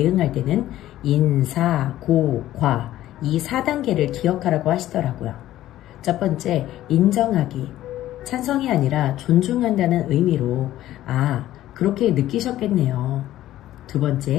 때는 인사, 고, 과 이 4단계를 기억하라고 하시더라고요. 첫 번째, 인정하기. 찬성이 아니라 존중한다는 의미로 그렇게 느끼셨겠네요. 두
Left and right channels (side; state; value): right; quieter; 14.0 dB